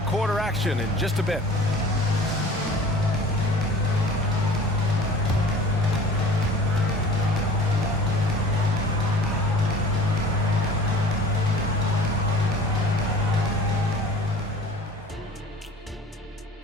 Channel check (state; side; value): normal; both; correlation 0.44